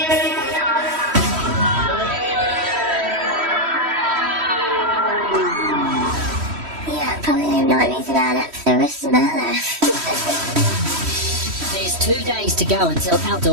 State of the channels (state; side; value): late; left; 3.1 ms